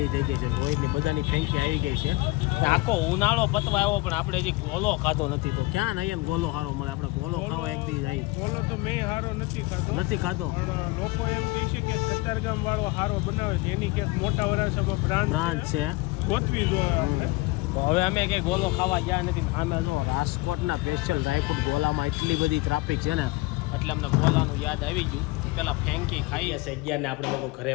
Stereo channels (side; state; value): right; quieter; 22.4 dB